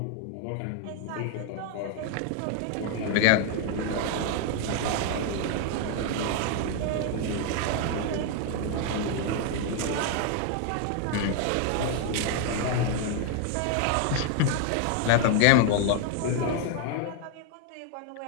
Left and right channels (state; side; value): different; both; correlation 0.00